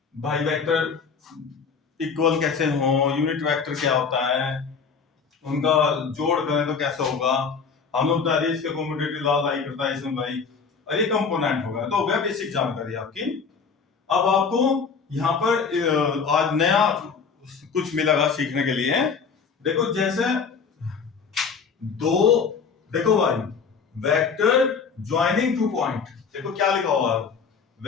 भाई वेक्टर इक्वल कैसे हो, यूनिट वेक्टर क्या होता है, उनका जोड़ करें तो कैसे होगा, हम लोग बता दिए इसके कम्यूटेटिव लॉ लाई करता है इसमें भाई, और ये कंपोनेंट होगा। तो हो गया बेसिक जानकारी आपकी। अब आपको यहाँ पर आज नया कुछ मिलेगा सीखने के लिए। देखो जैसे दो, देखो भाई वेक्टर ज्वाइनिंग टू पॉइंट, देखो क्या लिखा हुआ है,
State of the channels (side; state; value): right; quieter; 5.7 dB